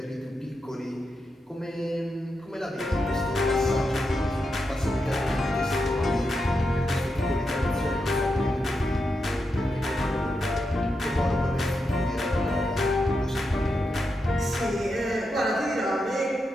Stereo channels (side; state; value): both; normal; correlation 0.86